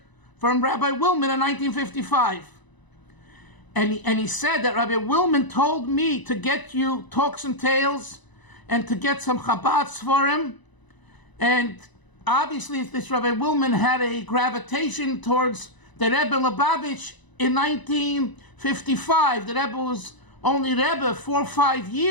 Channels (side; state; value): right; late; 1.0 ms